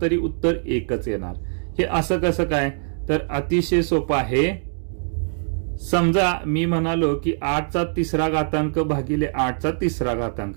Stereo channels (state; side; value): silent; left; digital silence